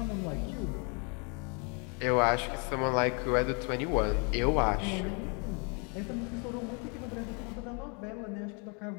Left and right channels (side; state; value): right; quieter; 35.3 dB